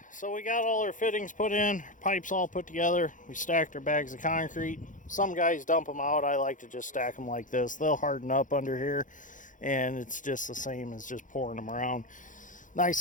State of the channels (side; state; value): right; late; 0.37 ms